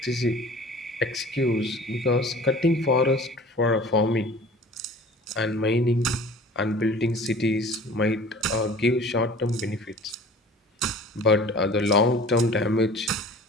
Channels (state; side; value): normal; both; correlation 0.45